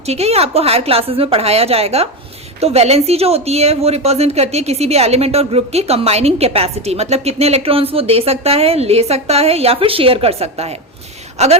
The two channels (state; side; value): normal; both; correlation 0.15